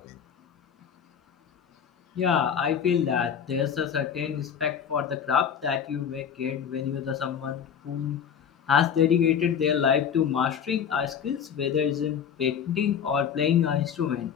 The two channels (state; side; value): quieter; right; 7.9 dB